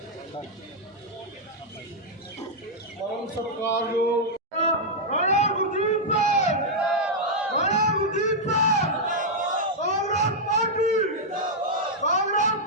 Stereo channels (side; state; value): both; normal; correlation -0.05